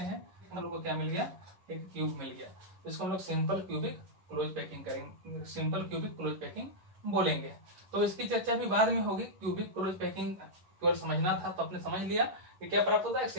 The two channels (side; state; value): left; late; 11 ms